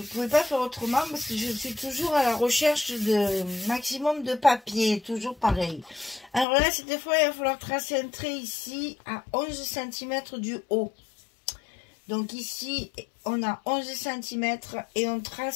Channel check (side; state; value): right; drops out; at 6.5 s